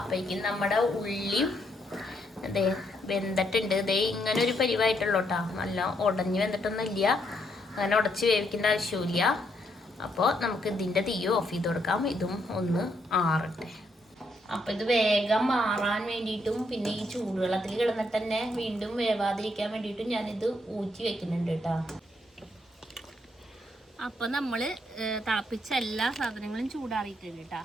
നമ്മുടെ ഉള്ളിയും അതേ വെന്തിട്ടുണ്ട്. ഇതേ ഇങ്ങനെ ഒരു പരിവായിട്ടുള്ളൂ കേട്ടോ. നല്ല ഉടഞ്ഞ് വെന്തിട്ടൊന്നും ഇല്ല, അങ്ങനെ ഉടച്ച് വേവിക്കേണ്ട ആവശ്യമില്ല. അപ്പോൾ നമുക്ക് ഇതിൻ്റെ തീ ഓഫ് ചെയ്ത് കൊടുക്കാം. ഇതും ഒന്ന് ആറട്ടെ. അപ്പോൾ ഇത് വേഗം മാറാൻ വേണ്ടിയിട്ടും പിന്നെ ഈ ചൂടുവെള്ളത്തിൽ കിടന്നിട്ട് തന്നെ വീണ്ടും വേവാതിരിക്കാൻ വേണ്ടിയിട്ടും ഞാനിത് ഊറ്റി വെക്കുന്നുണ്ട് കേട്ടോ. അപ്പോൾ നമ്മൾ തിളപ്പിച്ച എല്ലാ സാധനങ്ങളും ചൂടാറിയിട്ടുണ്ട് കേട്ടോ.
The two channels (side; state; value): both; normal; correlation 0.75